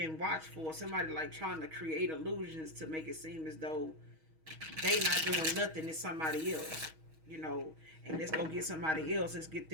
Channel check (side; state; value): left; late; 6.3 ms